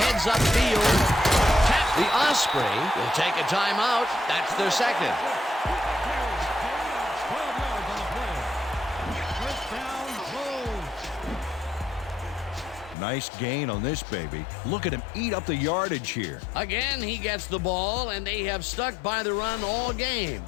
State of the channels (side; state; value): right; drops out; at 13.0 s